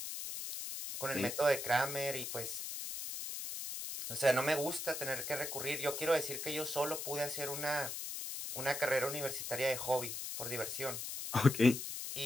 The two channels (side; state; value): left; noise; hiss, 5 dB below the sound